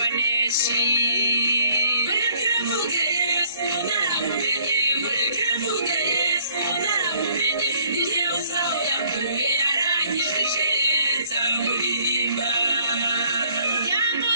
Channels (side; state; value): both; inverted; correlation -0.60